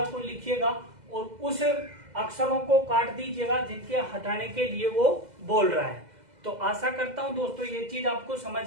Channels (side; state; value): left; late; 2.0 ms